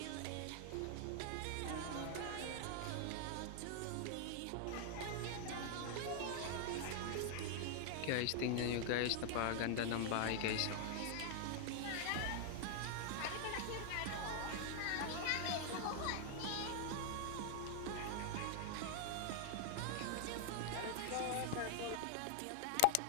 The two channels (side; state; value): both; different; correlation 0.00